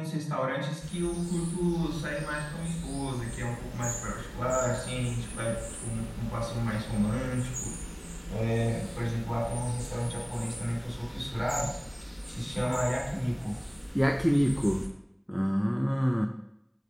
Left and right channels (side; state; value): both; identical; correlation 1.00